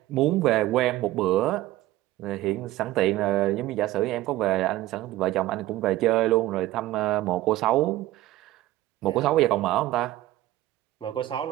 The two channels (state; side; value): quieter; left; 15.8 dB